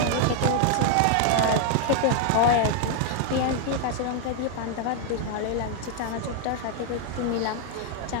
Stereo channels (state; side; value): different; both; correlation 0.00